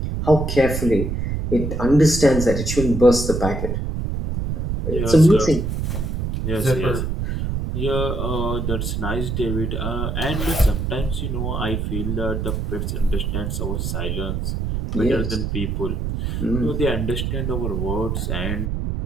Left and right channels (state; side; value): noise; right; rumble, 2 dB below the sound